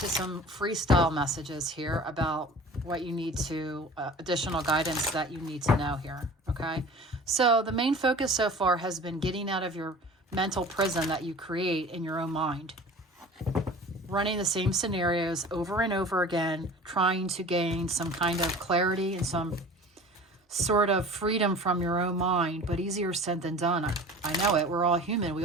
some freestyle messages here about what you need to, additional guidance that you need to know here, okay? So the main focus so far has been getting out of your mental prison that you create in your own mind. Running the same scenarios over and over again, trying to gain some kind of clarity and some sort of freedom from your own mind, but easier said than done. I know it. We're all human. We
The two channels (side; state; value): both; normal; correlation 0.41